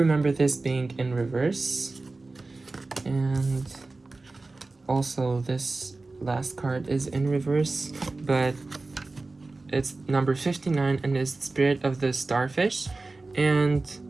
this being in reverse. And also this last card is in reverse, but it's number 59 and is the spirit of the starfish. And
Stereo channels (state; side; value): quieter; left; 3.4 dB